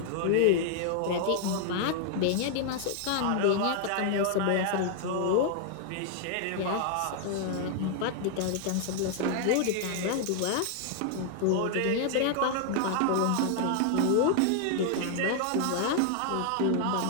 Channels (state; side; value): different; both; correlation 0.00